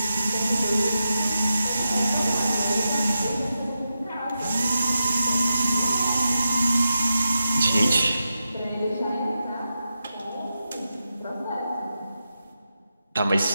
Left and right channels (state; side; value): inverted; both; correlation -0.89